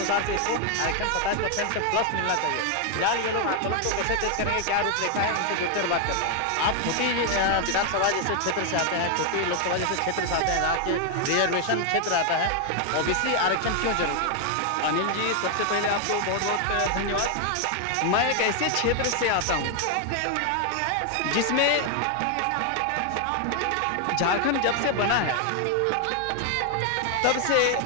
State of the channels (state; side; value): different; both; correlation 0.00